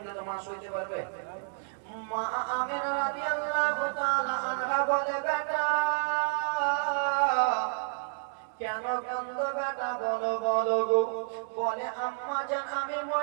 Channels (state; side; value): silent; left; digital silence